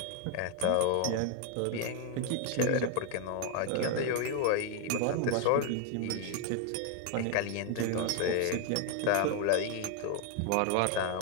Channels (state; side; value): different; both; correlation 0.01